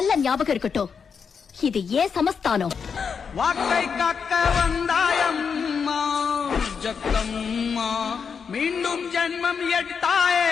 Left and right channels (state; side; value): quieter; right; 6.2 dB